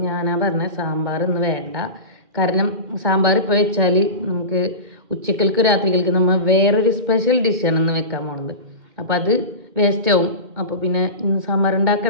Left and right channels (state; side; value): late; left; 2.0 ms